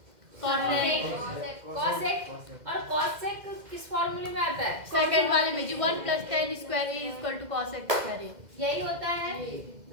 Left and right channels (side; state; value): left; late; 2.1 ms